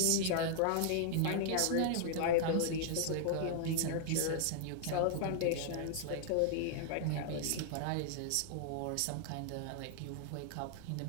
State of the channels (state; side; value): different; both; correlation -0.01